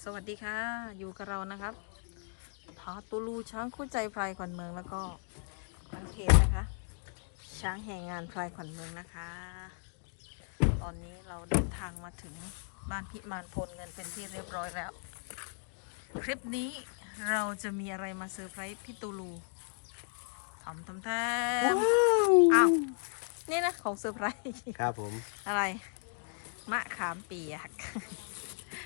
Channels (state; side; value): silent; right; 54 dB below the other